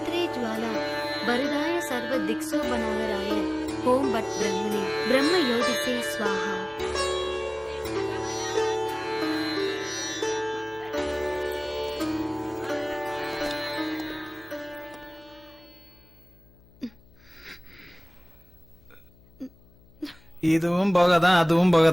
ज्वाला वरदाय सर्व दिक्सो बनावराय ओम भट ब्रह्मणे ब्रह्म योदिते स्वाहा. இதுவும் போகதான் அதுவும்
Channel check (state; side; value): noise; left; hum, 27 dB below the sound